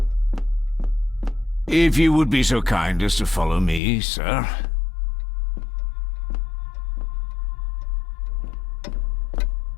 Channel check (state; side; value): drops out; right; at 3.8 s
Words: If you would be so kind as to follow me, sir.